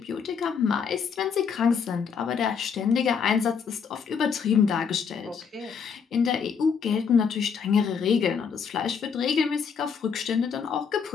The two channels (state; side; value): quieter; right; 6.4 dB